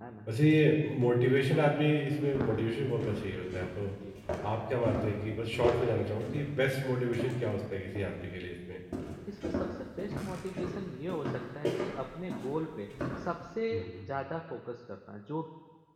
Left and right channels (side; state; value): both; identical; correlation 1.00